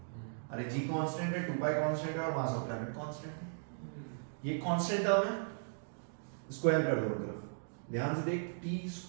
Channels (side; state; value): left; silent; digital silence